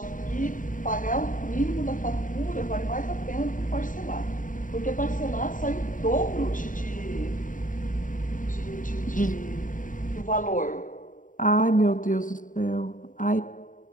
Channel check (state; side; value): late; right; 0.38 ms